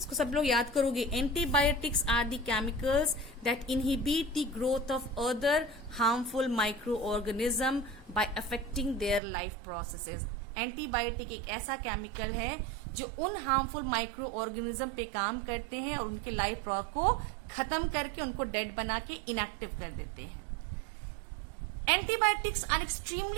सब लोग याद करोगे. Antibiotics are the chemicals that inhibit the growth of other harmful microorganism by affecting their life processes. Antibiotic एक ऐसा केमिकल है जो उन हार्मफुल माइक्रो ऑर्गेनिज्म पे काम करते हैं और उनके लाइफ को खत्म करके उनको डेड बना के इनएक्टिव कर देते हैं. Antibiotics are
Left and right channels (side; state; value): left; drops out; at 9.2 s